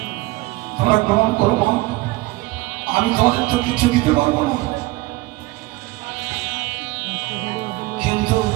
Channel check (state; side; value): quieter; left; 20.5 dB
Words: তোমরা গ্রহণ করো মা। আমি তোমাদের তো কিছু দিতে পারবো না, কিন্তু